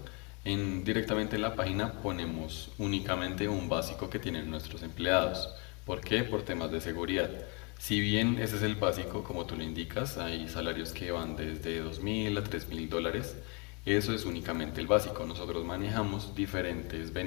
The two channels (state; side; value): quieter; right; 32.8 dB